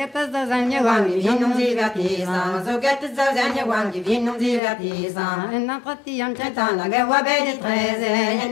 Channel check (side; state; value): right; drops out; at 4.6 s